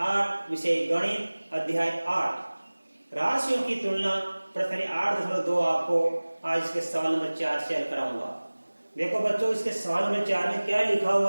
8 विषय गणित अध्याय 8 राशियों की तुलना प्रश्न 8.2 आपको आज इसके सवाल नंबर 4 से हल कराऊंगा। देखो बच्चों, इसके सवाल नंबर 4 में क्या लिखा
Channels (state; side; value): inverted; both; correlation -1.00